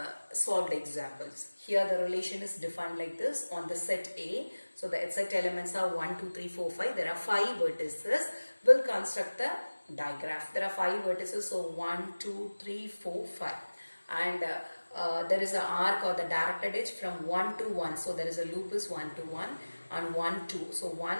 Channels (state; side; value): inverted; both; correlation -1.00